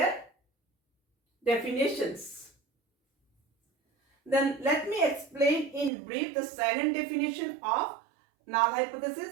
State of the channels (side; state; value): left; drops out; at 5.9 s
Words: definitions. Then let me explain in brief the second definition of null